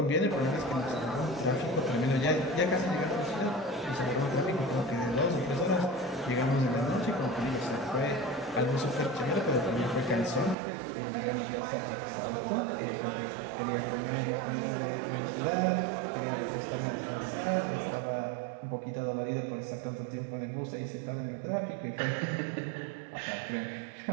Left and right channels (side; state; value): left; drops out; at 10.6 s